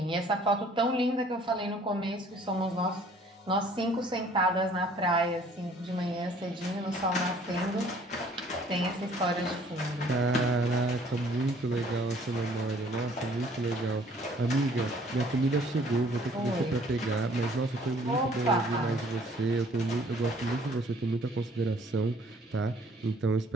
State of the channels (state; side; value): normal; both; correlation 0.57